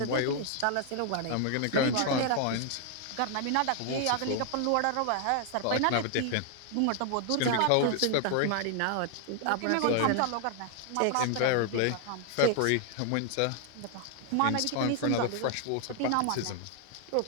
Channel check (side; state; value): both; different; correlation 0.00